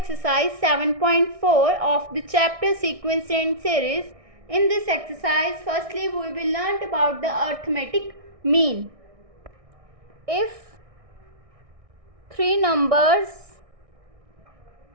7.4 of the chapter sequence and series. In this exercise, firstly we will learn about the arithmetic mean. If three numbers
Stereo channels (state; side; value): late; left; 1.6 ms